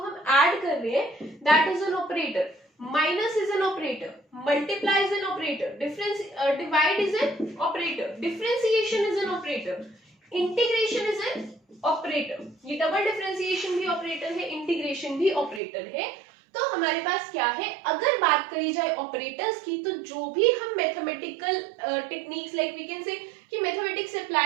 ऐड कर रहे हैं, that is an operator. Minus is an operator, multiply is an operator, difference divide is an operator, differentiation is an operator, integration is an operator. ये double differentiation भी operator है, इंटीग्रेशन भी ऑपरेटर है. तो हमारे पास क्या है, अगर बात करी जाए ऑपरेटर्स की, तो जो भी हम mathematical techniques like we can say कि मैथमेटिक्स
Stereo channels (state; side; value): drops out; left; at 15.6 s